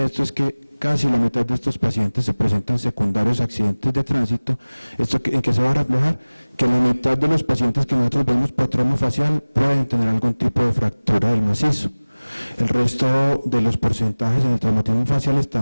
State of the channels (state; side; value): inverted; both; correlation -1.00